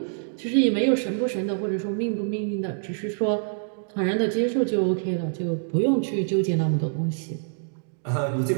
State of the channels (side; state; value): left; silent; digital silence